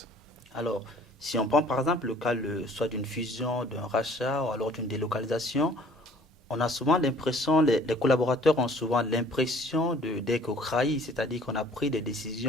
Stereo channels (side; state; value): both; normal; correlation 0.54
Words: Alors, si on prend par exemple le cas soit d'une fusion, d'un rachat ou alors d'une délocalisation, on a souvent l'impression, les collaborateurs ont souvent l'impression d'être trahis, c'est-à-dire qu'on a pris des